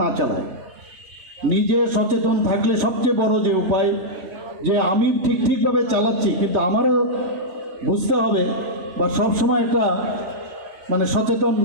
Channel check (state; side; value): late; left; 3.2 ms